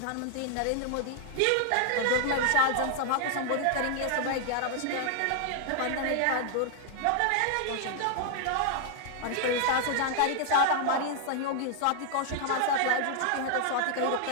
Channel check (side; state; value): both; different; correlation 0.00